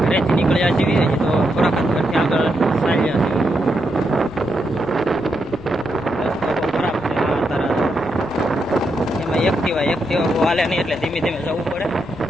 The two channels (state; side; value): noise; right; rumble, 21 dB below the sound